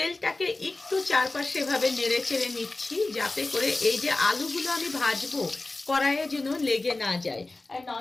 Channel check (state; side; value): quieter; right; 3.2 dB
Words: একটু চারপাশে এভাবে নেড়ে চেড়ে নিচ্ছি, যাতে করে এই যে আলুগুলো আমি ভাজবো কড়াইয়ে যেন লেগে না যায়। আর